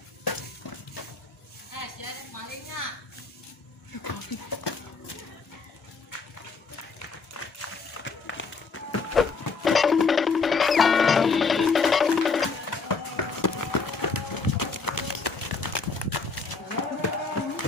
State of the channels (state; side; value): quieter; right; 4.6 dB